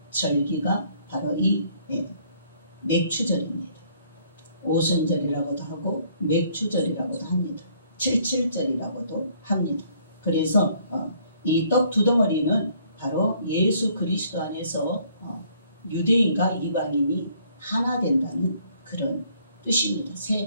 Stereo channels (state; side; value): inverted; both; correlation -0.63